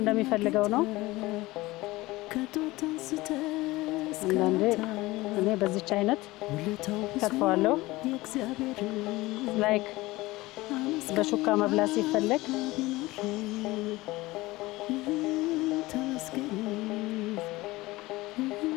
እንደሚፈልገው ነው። አንዳንዴ እኔ በዚች አይነት ውለታው ብዙ ከትፈዋለሁ። የእግዚአብሔር ላይክ በሹካ መብላት ሲፈለግ ተመስገን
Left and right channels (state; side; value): quieter; right; 19.8 dB